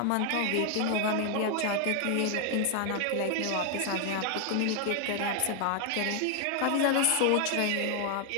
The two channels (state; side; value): different; both; correlation 0.00